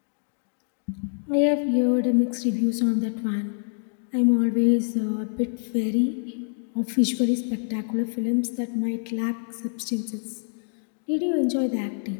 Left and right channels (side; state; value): right; silent; digital silence